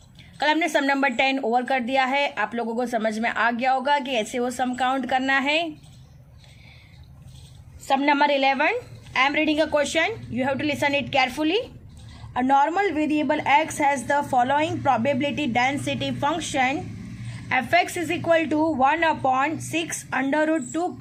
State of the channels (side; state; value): both; identical; correlation 1.00